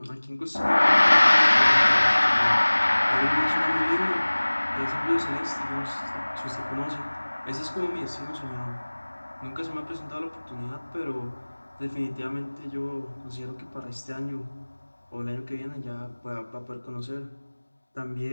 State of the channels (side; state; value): both; inverted; correlation -1.00